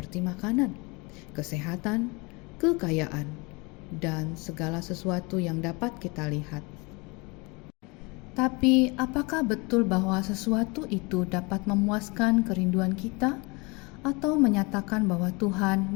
makanan, kesehatan, kekayaan, dan segala sesuatu yang dapat kita lihat. Tapi apakah betul bahwa sesuatu itu dapat memuaskan kerinduan kita atau menyatakan bahwa Tuhan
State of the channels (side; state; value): right; quieter; 27.6 dB